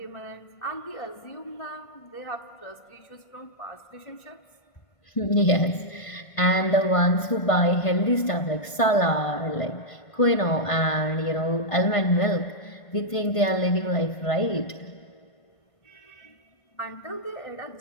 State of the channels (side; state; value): right; late; 1.5 ms